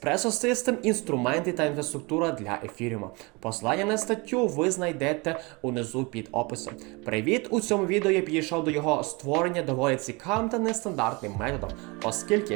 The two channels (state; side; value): quieter; left; 27.1 dB